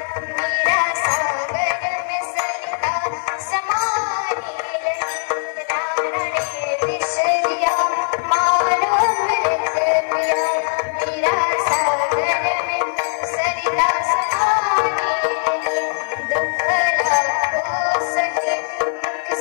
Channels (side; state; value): right; silent; digital silence